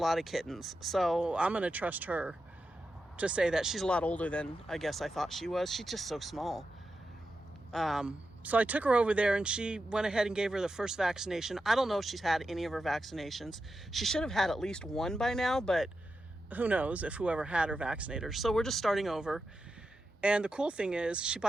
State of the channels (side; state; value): both; normal; correlation 0.89